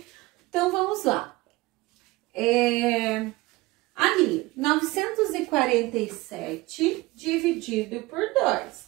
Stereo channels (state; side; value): quieter; left; 21.1 dB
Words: Então, vamos lá. Ali, 947 dividido por